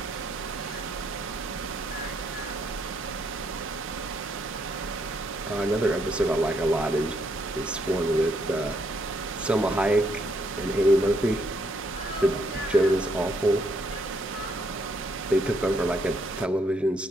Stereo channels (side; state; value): both; normal; correlation 0.73